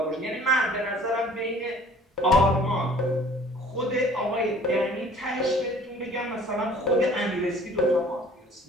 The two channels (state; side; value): normal; both; correlation 0.51